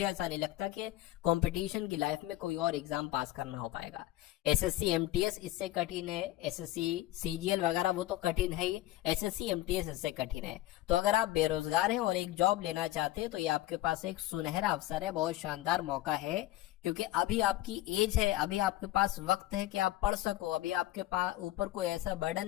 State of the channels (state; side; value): quieter; right; 15.7 dB